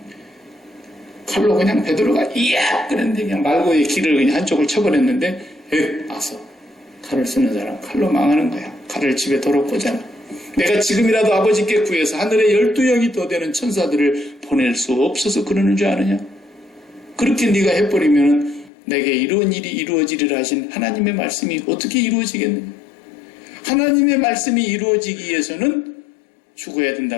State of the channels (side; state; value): right; drops out; at 18.7 s